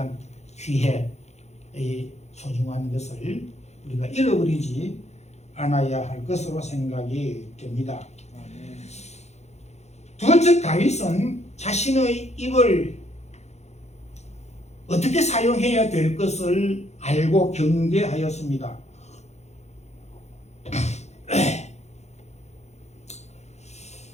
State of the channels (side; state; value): right; late; 0.32 ms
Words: 기회의 소중한 것을 우리가 잃어버리지 않아야 할 것으로 생각이 됩니다. 두 번째, 다윗은 자신의 입을 어떻게 사용해야 될 것을 알고 경계하였습니다.